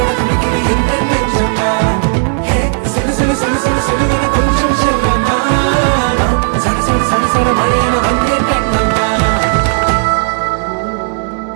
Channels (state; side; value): silent; left; 61 dB below the other